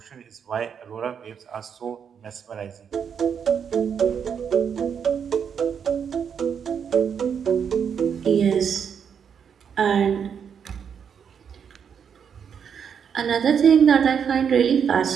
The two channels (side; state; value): left; quieter; 7.4 dB